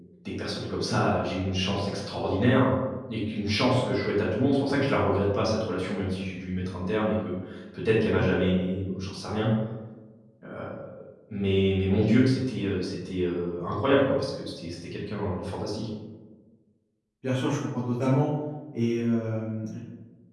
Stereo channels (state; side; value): identical; both; correlation 1.00